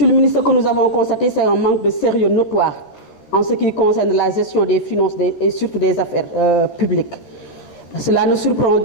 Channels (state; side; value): late; right; 13 ms